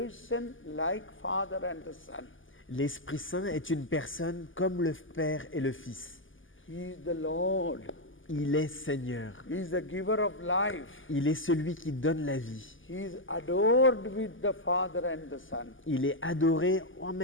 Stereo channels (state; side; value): late; right; 0.58 ms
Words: like Father and the Son. L'Esprit Saint est une personne comme le Père et le Fils. He is the Lord. Il est Seigneur. He is the giver of life. Il est celui qui donne la vie. He is adored with the Father and the Son. Il est adoré en